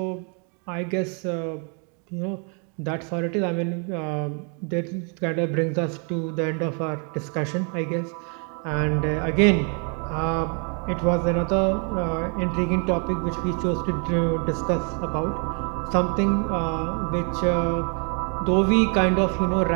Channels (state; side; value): quieter; left; 38.4 dB